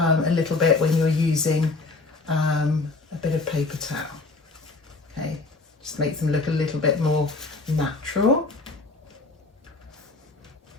little bit when you're using a bit of paper towel. Okay, just makes them look a little bit more natural.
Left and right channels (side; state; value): right; quieter; 3.7 dB